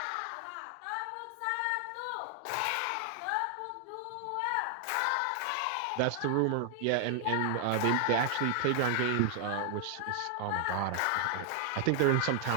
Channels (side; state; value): both; different; correlation 0.00